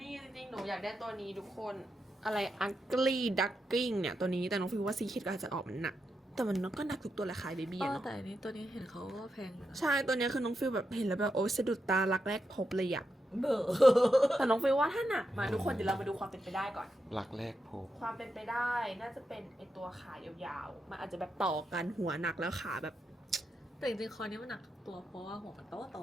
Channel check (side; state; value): both; normal; correlation 0.85